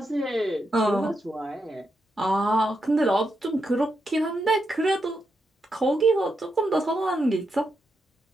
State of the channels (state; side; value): normal; both; correlation 0.84